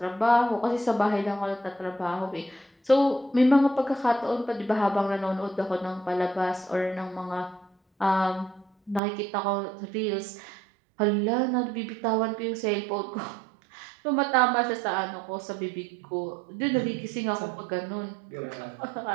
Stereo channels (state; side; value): drops out; left; at 9.0 s